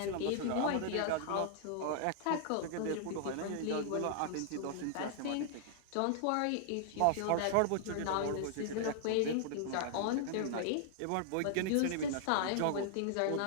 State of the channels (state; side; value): different; both; correlation -0.01